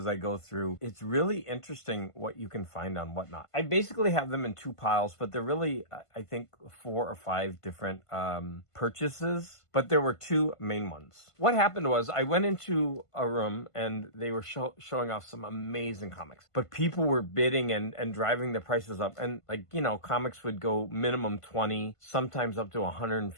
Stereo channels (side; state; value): right; late; 1.5 ms